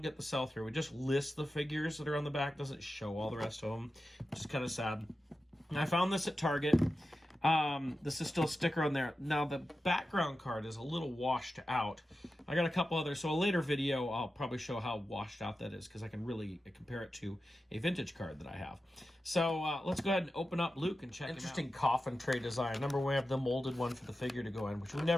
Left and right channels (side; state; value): both; normal; correlation 0.92